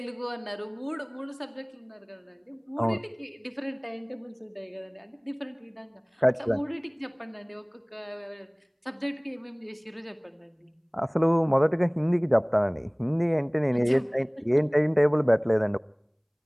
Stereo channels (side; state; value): both; identical; correlation 1.00